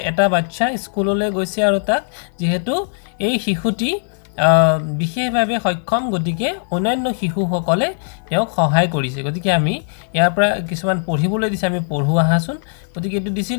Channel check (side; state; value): right; silent; digital silence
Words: এটা বাচ্চা স্কুললৈ গৈছে আৰু তাক যেহেতু এই শিশুটি বিশেষভাৱে সক্ষম গতিকে অন্যান্য শিশুসকলে তেওঁক সহায় কৰিছে গতিকে আমি ইয়াৰ পৰা কিছুমান পঢ়িবলৈ দিছে আমি পঢ়ো আহাচোন গতিকে এইটো দিছিল